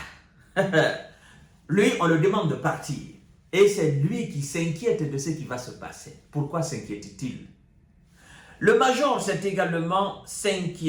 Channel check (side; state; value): both; identical; correlation 1.00